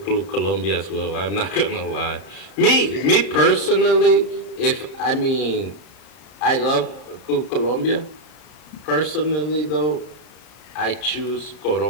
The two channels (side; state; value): right; late; 33 ms